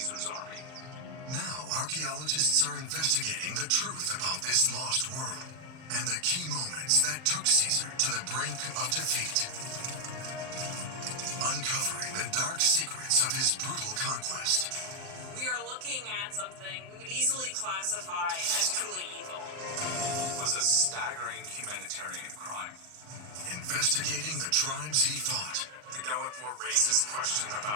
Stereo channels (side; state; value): left; late; 39 ms